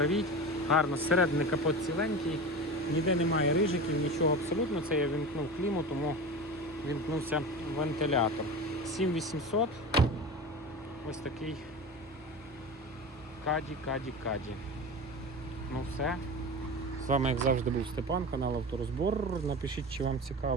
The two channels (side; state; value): both; normal; correlation 0.29